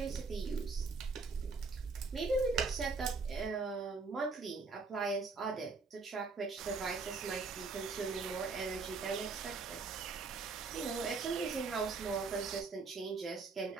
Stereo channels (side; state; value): left; quieter; 4.2 dB